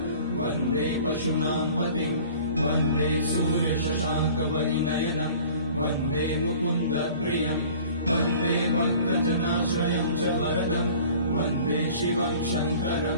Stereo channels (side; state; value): both; inverted; correlation -0.46